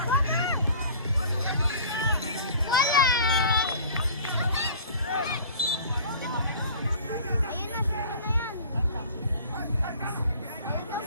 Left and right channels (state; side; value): inverted; both; correlation -0.45